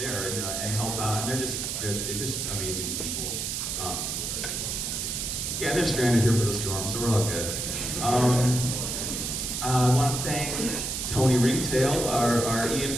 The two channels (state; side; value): noise; right; hiss, 2 dB below the sound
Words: and help out. And they're just amazing people. Yeah, they're stranded here for the storm, so we're all good. I want to thank Tony Ringtail, our